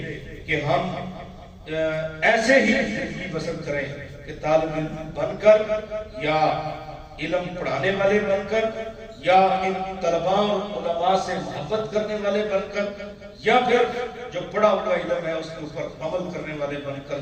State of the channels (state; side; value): identical; both; correlation 1.00